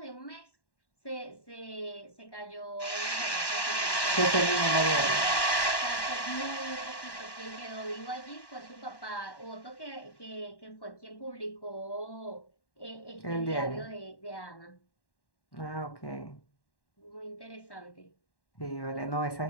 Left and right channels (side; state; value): right; late; 1.1 ms